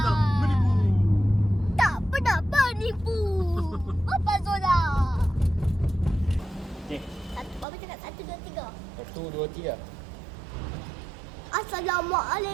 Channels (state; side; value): drops out; left; at 7.7 s